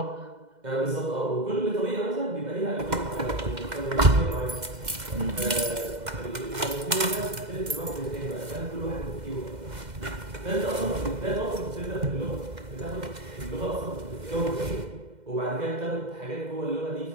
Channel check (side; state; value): left; late; 2.1 ms